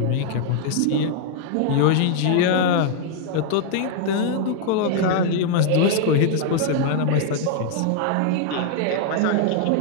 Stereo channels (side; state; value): both; different; correlation 0.00